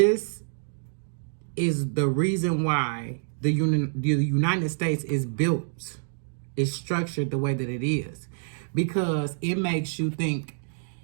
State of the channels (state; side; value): silent; left; digital silence